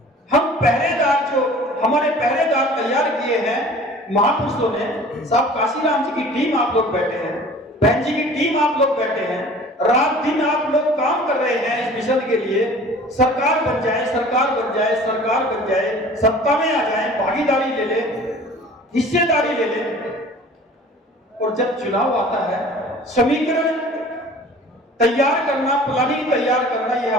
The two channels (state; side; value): normal; both; correlation 0.46